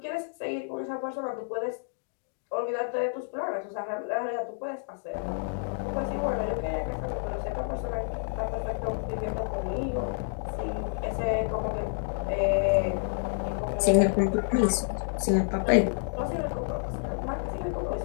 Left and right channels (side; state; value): right; silent; digital silence